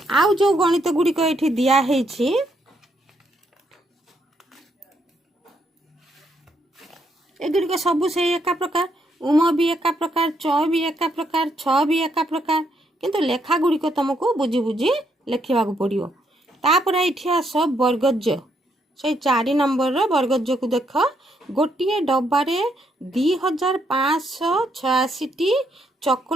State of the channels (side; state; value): both; normal; correlation 0.75